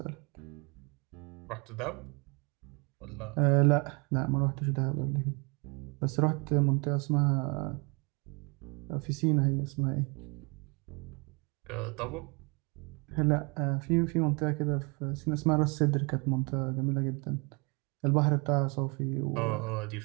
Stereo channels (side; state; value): left; quieter; 31.1 dB